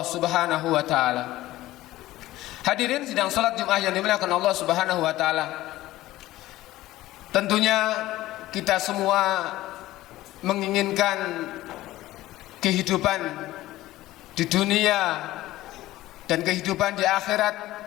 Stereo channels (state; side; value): quieter; right; 16.2 dB